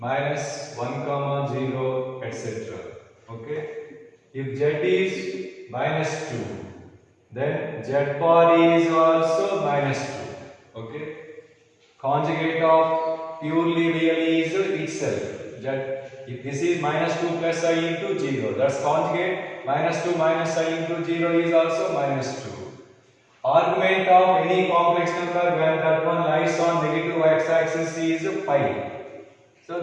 1 comma 0, etc. Okay. If Z is minus 2, then Z bar is also minus 2. Okay. Conjugate of purely real is itself. If this is minus 2 plus I into 0, that's conjugate minus 2 minus I into 0 is also minus 2. Argument of any complex number when that one lies on negative x-axis is pi. So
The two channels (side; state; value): both; identical; correlation 1.00